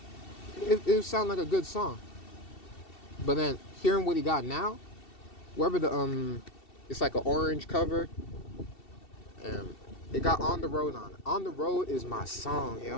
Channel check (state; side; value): late; right; 2.7 ms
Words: it sounded like a good song. But then hearing what he got now, wherever the it's like an orange cover, and it got On the Road on it. On the Road is my song,